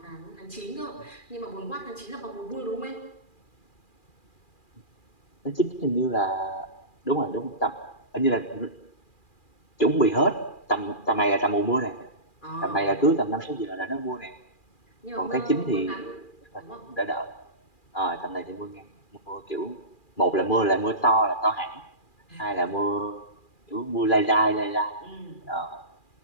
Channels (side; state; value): right; late; 2.4 ms